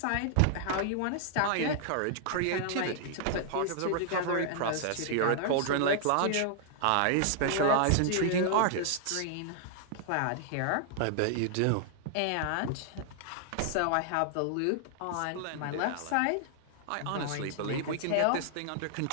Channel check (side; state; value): both; different; correlation -0.01